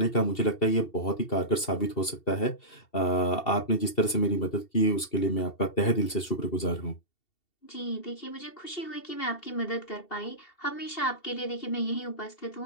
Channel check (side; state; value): right; late; 2.7 ms